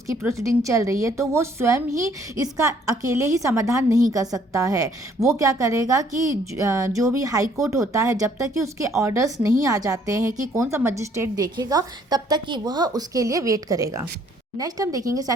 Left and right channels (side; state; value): both; normal; correlation 0.63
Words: प्रोसीडिंग चल रही है तो वो स्वयं ही इसका अकेले ही समाधान नहीं कर सकता है। वो क्या करेगा कि जो भी हाई कोर्ट होता है जब तक कि उसके ऑर्डर्स नहीं आ जाते हैं कि कौन सा मजिस्ट्रेट देखेगा तब तक कि वह उसके लिए वेट करेगा। नेक्स्ट हम देखेंगे